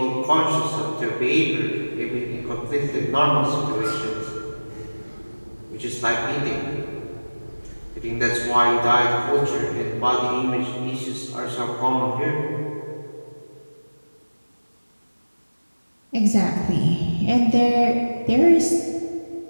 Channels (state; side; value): inverted; both; correlation -1.00